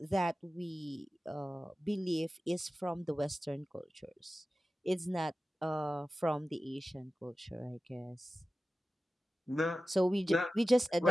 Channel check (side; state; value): both; normal; correlation 0.94